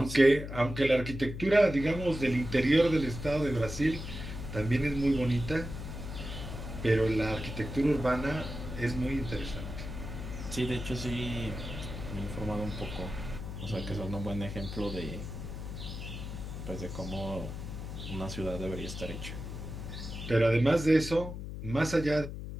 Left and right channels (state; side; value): noise; left; hum, 8 dB below the sound